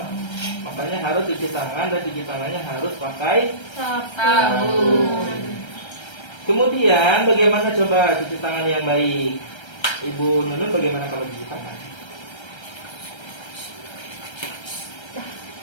Makanya harus cuci tangan dan cuci tangannya harus pakai Sabun. Kemudian bagaimana coba cuci tangan yang baik? Ibu Nunun bagaimana kalau cuci tangan?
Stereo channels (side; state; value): right; late; 1.3 ms